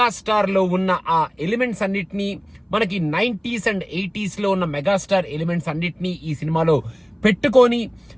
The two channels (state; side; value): identical; both; correlation 1.00